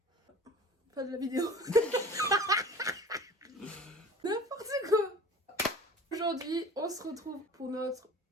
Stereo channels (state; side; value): normal; both; correlation 0.43